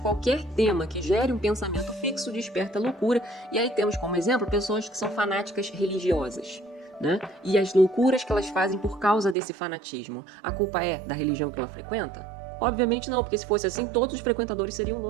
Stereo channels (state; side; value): drops out; left; at 9.3 s